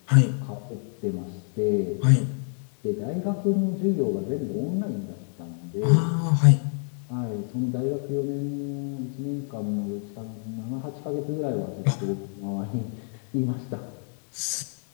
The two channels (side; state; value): right; silent; 60 dB below the other